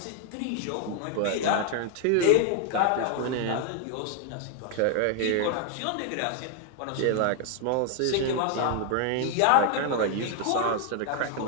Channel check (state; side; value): different; both; correlation 0.00